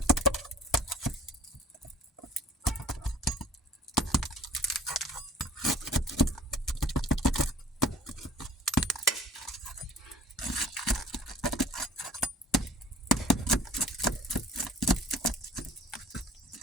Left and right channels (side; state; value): both; normal; correlation 0.48